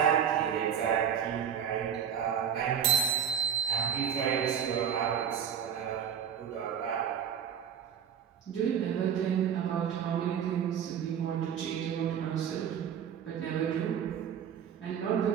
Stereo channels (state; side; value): quieter; left; 8.4 dB